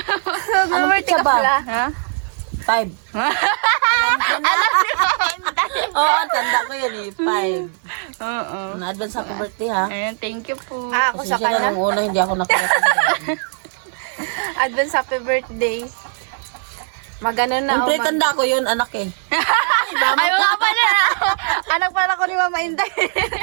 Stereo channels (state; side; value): silent; left; 57 dB below the other